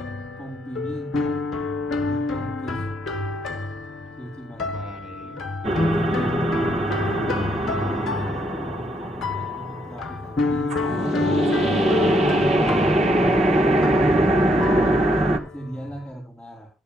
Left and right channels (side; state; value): both; normal; correlation 0.73